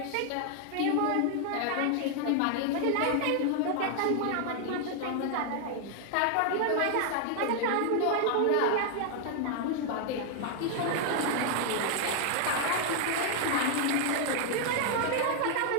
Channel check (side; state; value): both; different; correlation 0.00